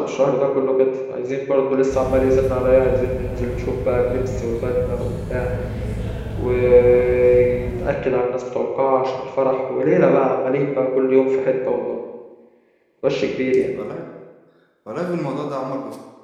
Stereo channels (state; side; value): identical; both; correlation 1.00